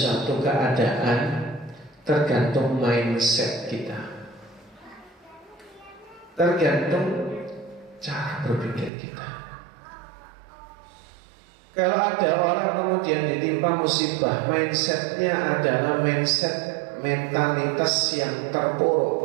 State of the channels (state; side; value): drops out; left; at 8.9 s